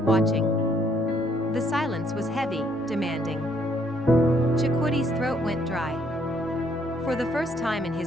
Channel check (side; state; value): both; normal; correlation 0.68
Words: watching. The silence was heavy, demanding. Chakwoody's throat went dry. For the first time in